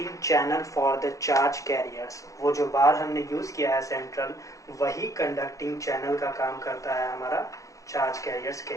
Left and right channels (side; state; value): right; late; 0.16 ms